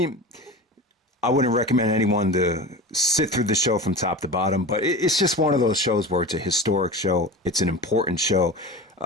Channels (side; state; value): both; normal; correlation 0.31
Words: I wouldn't recommend anyone to sit through the show from top to bottom, but it's just one of those shows where it's a historic show. It's an important show.